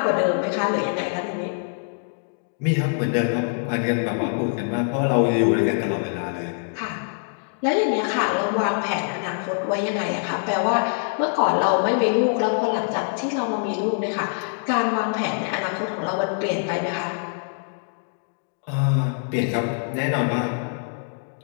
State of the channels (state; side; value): silent; right; 62 dB below the other